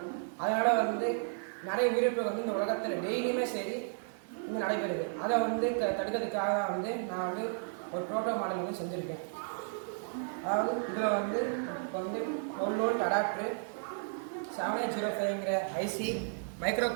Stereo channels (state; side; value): silent; left; digital silence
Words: அதனால் நிறைய உயிரிழப்புகள் இந்த உலகத்தில் டெய்லியுமே சரி நடைபெறுது. அதை தடுக்கிறதுக்காக நான் ஒரு ப்ரோட்டோ மாடல் செஞ்சுருக்கேன். அதாவது இதில் இப்போ 12 வோல்ட் அடாப்டரு, 7805ங்கிற IC, மைக்ரோ